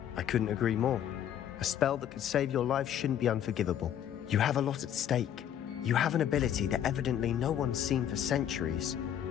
I couldn't agree more. A spell that could save your life shouldn't be unforgivable. You have a lot at stake. You have an ability that evidently no one's seen for centuries.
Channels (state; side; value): quieter; right; 10.0 dB